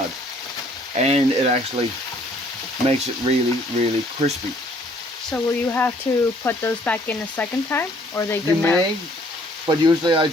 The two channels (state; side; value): normal; both; correlation 0.60